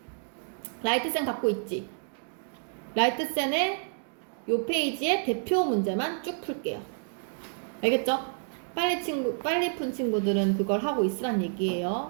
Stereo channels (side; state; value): left; silent; digital silence